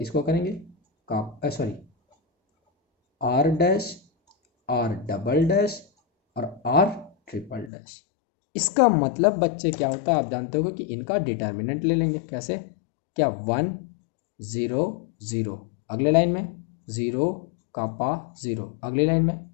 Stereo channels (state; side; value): drops out; right; at 7.7 s